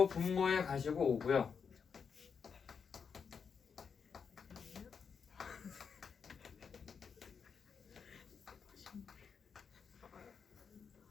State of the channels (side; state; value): right; quieter; 6.3 dB